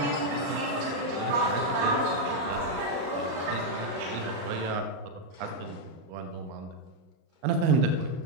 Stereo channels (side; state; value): left; late; 38 ms